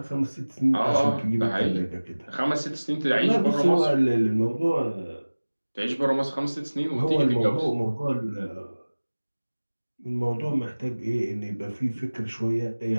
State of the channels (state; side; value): inverted; both; correlation -1.00